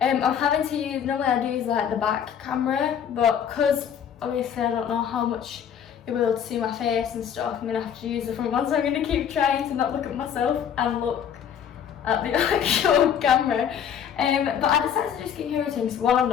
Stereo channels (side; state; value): right; quieter; 8.5 dB